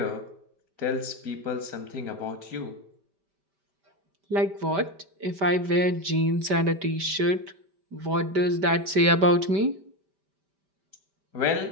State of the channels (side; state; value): left; late; 5.1 ms